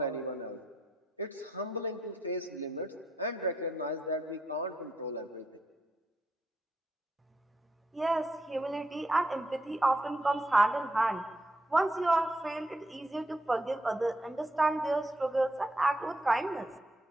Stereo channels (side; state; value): both; normal; correlation 0.79